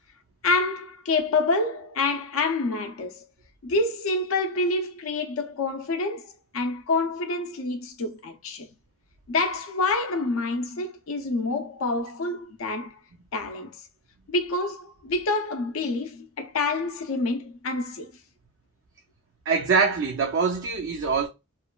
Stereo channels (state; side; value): normal; both; correlation 0.01